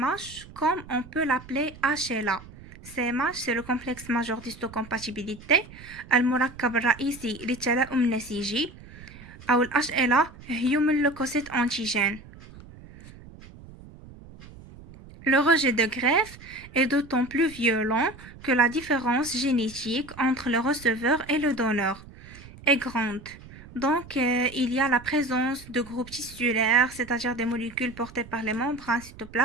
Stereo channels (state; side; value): noise; right; rumble, 19 dB below the sound